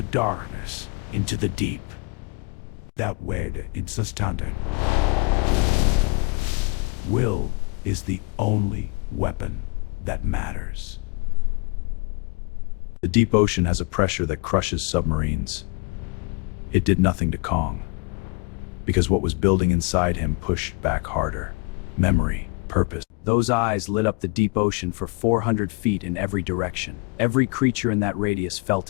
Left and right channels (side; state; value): right; quieter; 30.5 dB